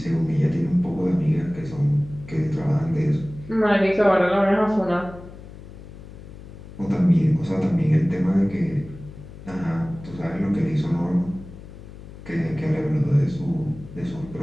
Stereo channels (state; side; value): noise; left; hum, 16 dB below the sound